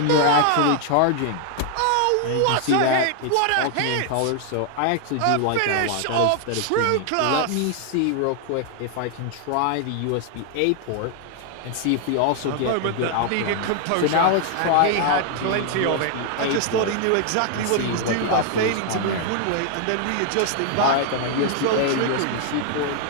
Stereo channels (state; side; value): different; both; correlation 0.00